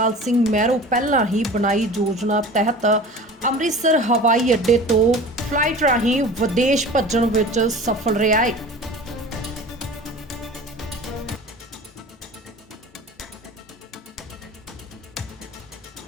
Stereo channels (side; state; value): both; normal; correlation 0.39